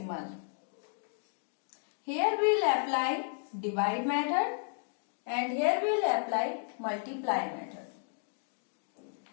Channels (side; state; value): right; silent; digital silence